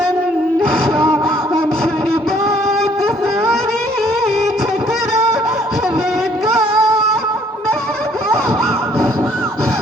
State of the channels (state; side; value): normal; both; correlation 0.63